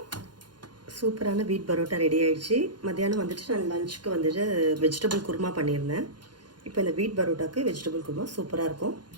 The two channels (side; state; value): left; late; 0.71 ms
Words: சூப்பரான வீட் பரோட்டா ரெடி ஆயிடுச்சு. மத்தியானம் வந்துட்டு நான் லஞ்சுக்கு வந்துட்டு வெஜிடபிள் குருமா பண்ணியிருந்தேன். இப்போ இந்த வீட் பரோட்டாக்கு வெஜிடபிள் குருமா சூப்பராக இருக்கும்.